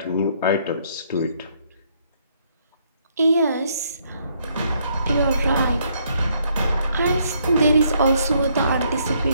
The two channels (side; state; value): both; inverted; correlation -0.70